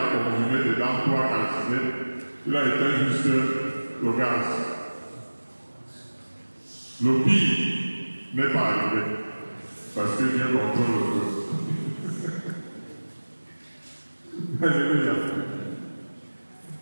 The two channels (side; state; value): both; inverted; correlation -1.00